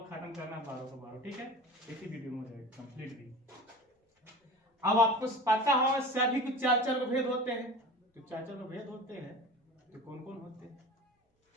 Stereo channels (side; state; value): both; normal; correlation 0.36